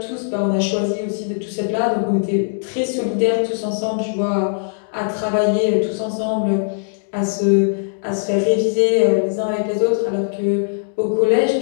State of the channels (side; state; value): right; silent; digital silence